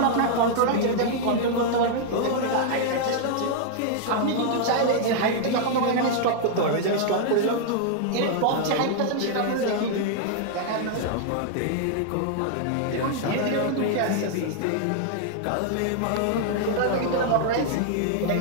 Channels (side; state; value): both; different; correlation 0.00